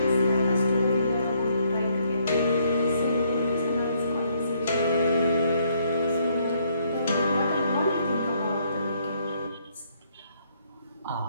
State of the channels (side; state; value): both; inverted; correlation -0.70